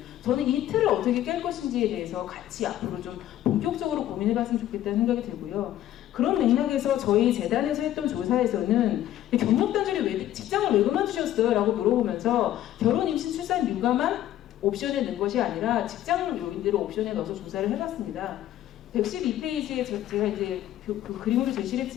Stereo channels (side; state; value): right; quieter; 12.8 dB